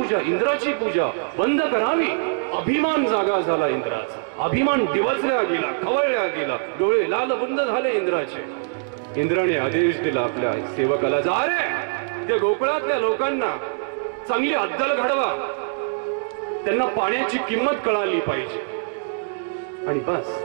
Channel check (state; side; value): silent; left; digital silence